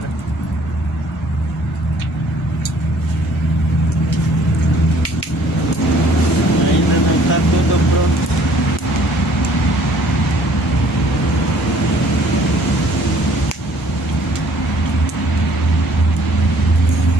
Ainda não tá tudo pronto.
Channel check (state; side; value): normal; both; correlation 0.58